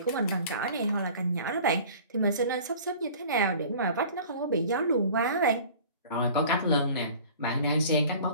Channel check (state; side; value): inverted; both; correlation -0.45